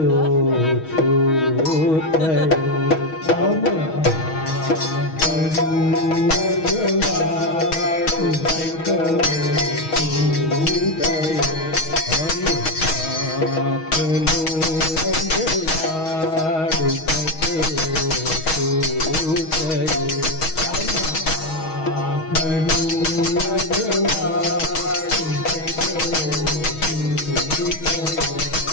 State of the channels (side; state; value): right; late; 6.3 ms